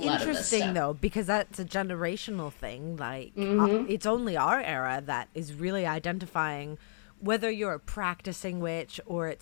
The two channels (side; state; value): right; silent; digital silence